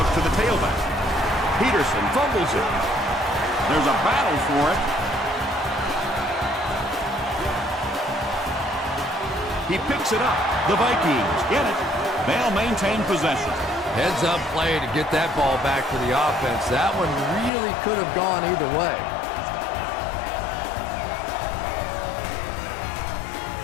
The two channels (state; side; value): drops out; right; at 17.5 s